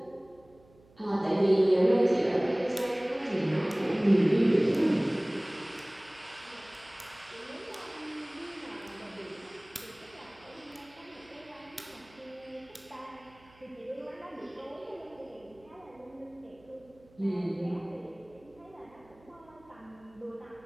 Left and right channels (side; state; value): right; noise; hum, 27 dB below the sound